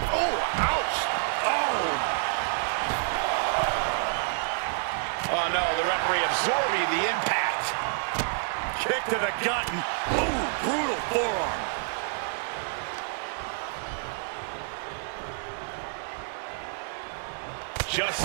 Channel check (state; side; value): silent; left; digital silence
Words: Oh, ouch. Oh no, the referee absorbing the impact. Kick to the gut. Ooh, brutal forearm. Just